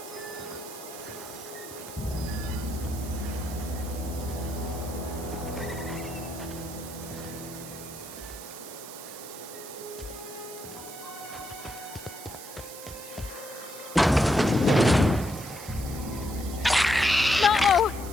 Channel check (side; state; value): right; noise; hiss, 13 dB below the sound